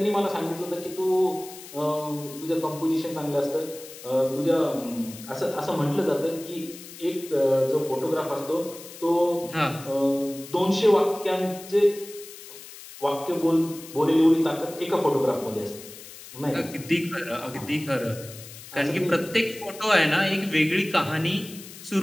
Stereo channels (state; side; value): noise; left; hiss, 16 dB below the sound